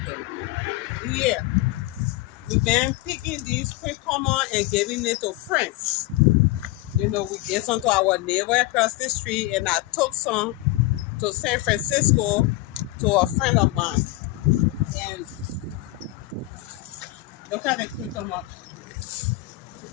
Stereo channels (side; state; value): right; quieter; 18.3 dB